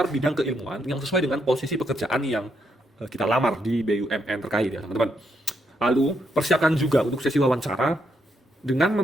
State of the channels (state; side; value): normal; both; correlation 0.78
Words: bidang keilmuan yang sesuai dengan posisi pekerjaan yang kita lamar di BUMN terkait ya teman-teman. Lalu, persiapkan juga untuk sesi wawancara dengan